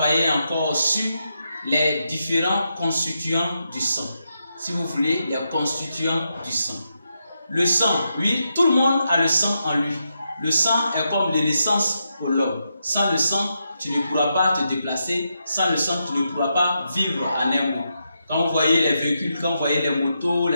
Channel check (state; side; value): inverted; both; correlation -0.84